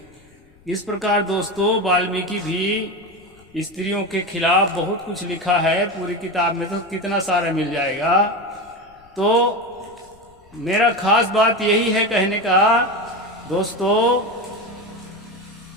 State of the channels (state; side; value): noise; left; rumble, 29 dB below the sound